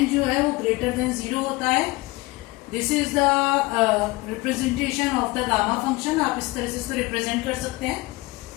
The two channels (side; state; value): right; quieter; 22.0 dB